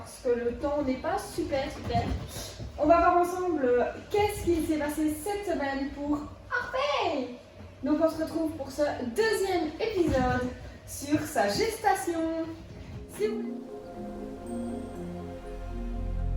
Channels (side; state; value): both; identical; correlation 1.00